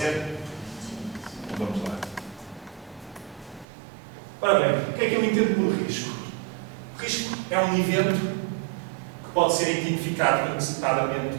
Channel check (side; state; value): left; drops out; at 3.7 s